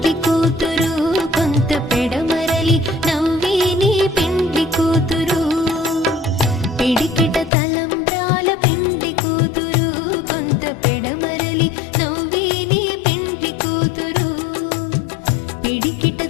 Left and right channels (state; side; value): drops out; right; at 7.5 s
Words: కూతురు కొంత పెడమరలి నవ్వే నీ పెండ్లి కూతురు పిడికిట తలంబ్రాల పెండ్లి కూతురు కొంత పెడమరలి నవ్వే నీ పెండ్లి కూతురు పిడికిట